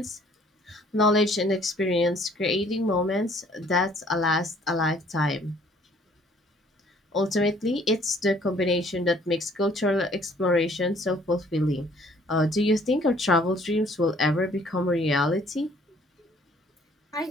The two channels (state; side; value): normal; both; correlation 0.59